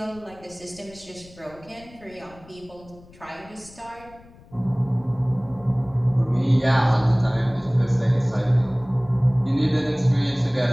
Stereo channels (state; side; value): noise; left; rumble, 23 dB below the sound